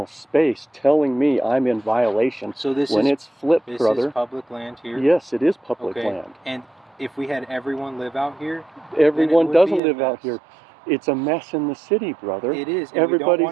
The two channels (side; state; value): left; drops out; at 9.8 s